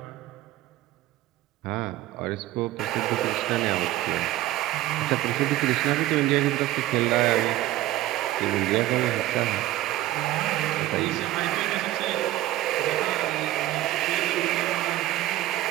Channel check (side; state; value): left; quieter; 15.3 dB